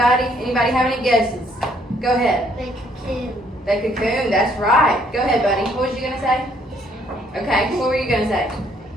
Anybody have any guesses? Go ahead. They cocoon. They cocoon, that's right. Go ahead, buddy. What was you going to say? Okay, what were you going to say?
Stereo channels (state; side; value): normal; both; correlation 0.66